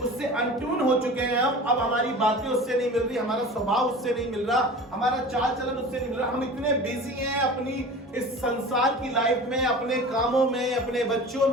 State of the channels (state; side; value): normal; both; correlation 0.37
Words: उससे अनट्यून हो चुके हैं। अब हमारी बातें उससे नहीं मिल रही, हमारा स्वभाव उससे नहीं मिल रहा, हमारा चाल चलन उससे नहीं मिल रहा। हम इतने बिजी हैं अपनी इस संसार की लाइफ में, अपने कामों में, अपने बच्चों